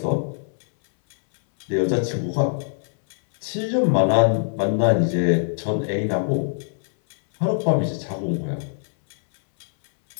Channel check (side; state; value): right; silent; 64 dB below the other